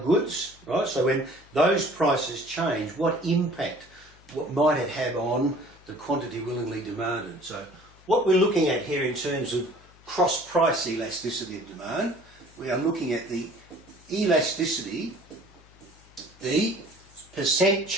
right? So when those prices change, what impact might it have on the quantity willingly demanded? So what we're looking at here in terms of cross-price elasticity of demand, we are looking at the elasticity, the percent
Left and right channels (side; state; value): left; noise; hum, 26 dB below the sound